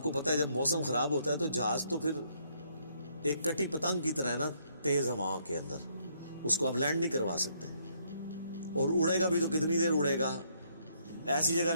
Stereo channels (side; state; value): both; inverted; correlation -0.71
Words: کو پتہ ہے جب موسم خراب ہوتا ہے تو جہاز تو پھر ایک کٹی پتنگ کی طرح ہے نا، تیز ہواؤں کے اندر اس کو آپ لینڈ نہیں کروا سکتے، اور اڑے گا بھی تو کتنی دیر اڑے گا. ایسی جگہ